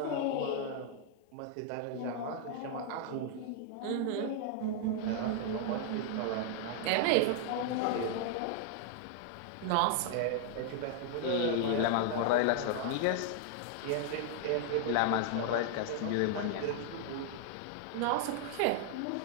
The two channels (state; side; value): different; both; correlation 0.00